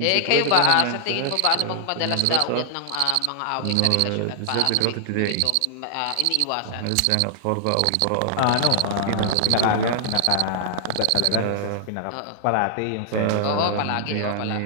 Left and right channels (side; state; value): both; different; correlation -0.01